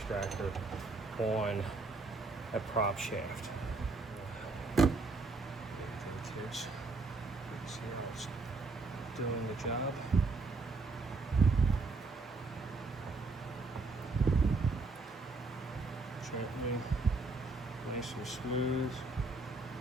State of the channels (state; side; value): quieter; left; 3.6 dB